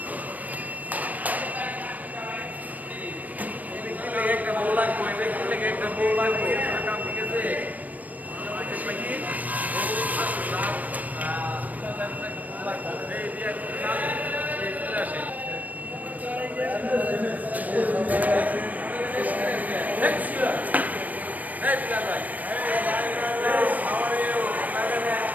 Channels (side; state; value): left; late; 0.076 ms